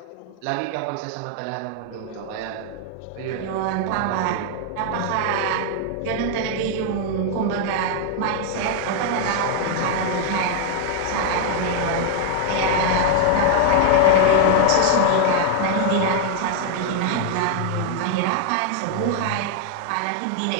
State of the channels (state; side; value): different; both; correlation 0.00